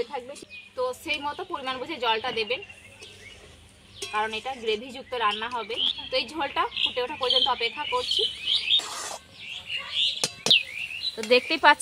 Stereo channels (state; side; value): identical; both; correlation 1.00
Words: থাকবে, তো সেই মতো পরিমাণ বুঝে জলটা দেবেন, কারণ এটা গ্রেভিযুক্ত রান্না হবে। তো এই ঝোলটা ফুটে ওঠা পর্যন্ত অপেক্ষা করছি। তো দেখতেই